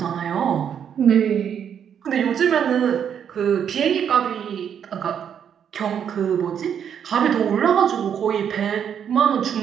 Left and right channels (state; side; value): quieter; left; 8.3 dB